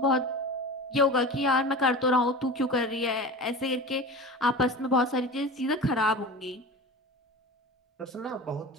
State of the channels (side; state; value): both; normal; correlation 0.32